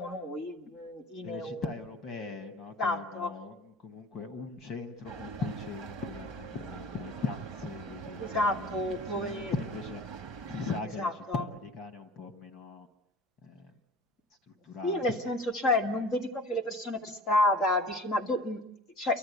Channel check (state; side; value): normal; both; correlation 0.42